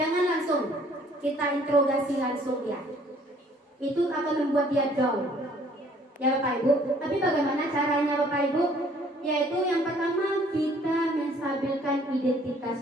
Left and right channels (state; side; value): normal; both; correlation 0.59